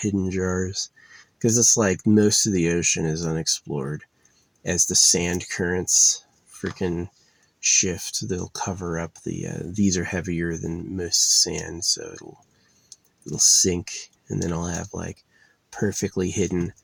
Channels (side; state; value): both; identical; correlation 1.00